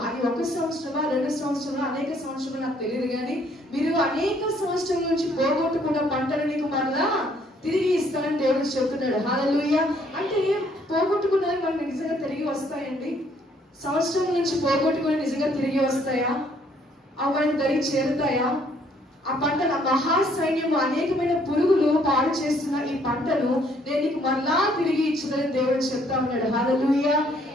అది 1 సంవత్సరమా 2 సంవత్సరమా అనేక సంవత్సరాలు నాకు తెలియదు కానీ, మీరు అనేక సంవత్సరాల నుంచి పోగొట్టుకున్న పంటను నీకు మరలా తిరిగి ఇస్తానని దేవుడు చెప్తున్నాడు. హల్లెలూయా. అంటే పోగొట్టుకున్నవి మనకు నిజంగా తిరిగి వస్తాయండి? సంవత్సరం నుంచి పోగొట్టుకుని నిజంగా తిరిగి వస్తాయా? అవన్నీ దరి చేరుతాయా? ఆ పంటను మహాసైన్యము అనేకమైన పురుగులు పాడు చేస్తున్న ఈ పంటను నేను నీకు మరలా తిరిగి ఇచ్చిందని దేవుడు చెప్తా ఉన్నాడు. హల్లెలూయా.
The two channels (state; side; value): normal; both; correlation 0.65